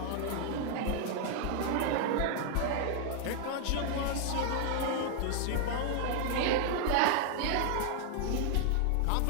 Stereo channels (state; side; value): different; both; correlation 0.00